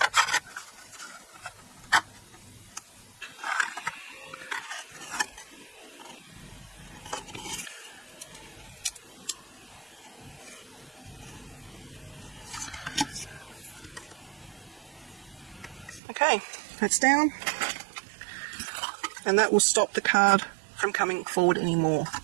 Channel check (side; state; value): left; drops out; at 16.0 s